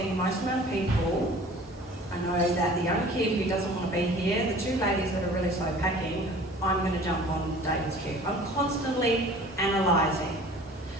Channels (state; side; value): normal; both; correlation 0.46